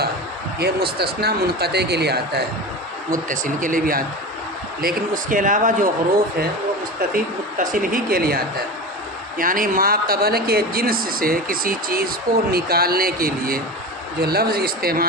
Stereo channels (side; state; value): both; normal; correlation 0.27